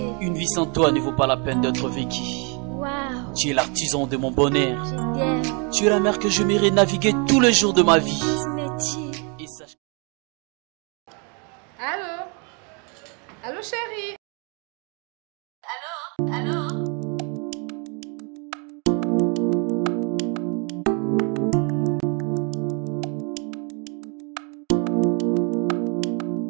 Une vie sans toi ne vaut pas la peine d'être vécue. Waouh. Tu es l'artisan de mon bonheur. Je t'aime. Tu es la mer que je m'irai naviguer tous les jours de ma vie. Et sache... Allô? Allô, chérie? Allô? Allô?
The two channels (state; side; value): quieter; left; 35.4 dB